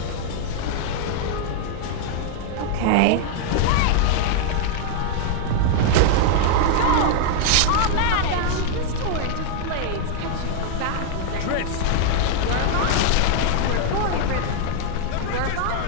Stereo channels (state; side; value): different; both; correlation 0.00